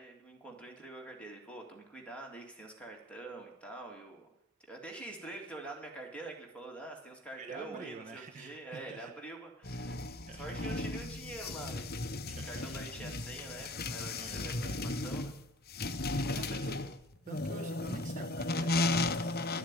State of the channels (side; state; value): both; normal; correlation 0.49